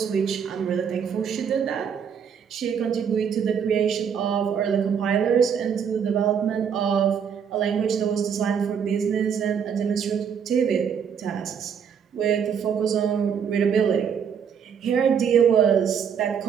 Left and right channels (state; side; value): quieter; left; 7.4 dB